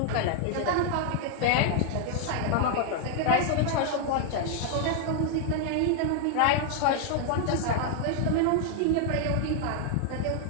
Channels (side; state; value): both; different; correlation 0.00